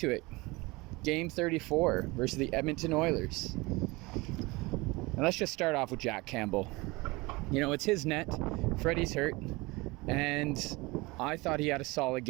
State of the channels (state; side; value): quieter; left; 23.6 dB